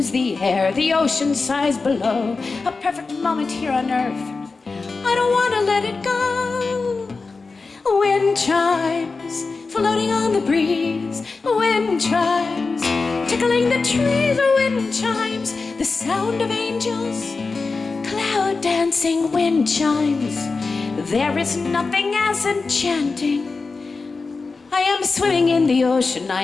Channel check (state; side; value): quieter; right; 4.1 dB